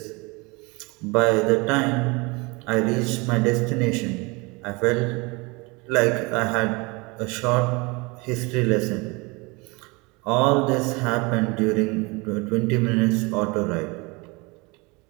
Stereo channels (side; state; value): left; quieter; 26.7 dB